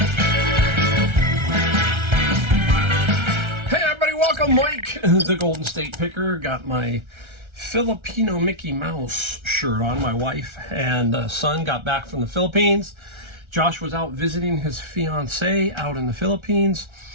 Welcome, Mike, the Golden State Picker. Got my Filipino Mickey Mouse shirt on. My wife and son got back from the Philippines. Josh was out visiting his fiance out in the Philippines.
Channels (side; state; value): left; late; 1.3 ms